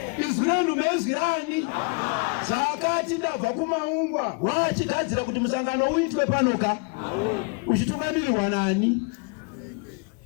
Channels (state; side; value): quieter; right; 33.6 dB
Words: Izwi renyu bezwi rani. Saka ndabva kuMaungwa wachigadzira kuti musangano uitwe panoka. Uchitungamirirwa nani?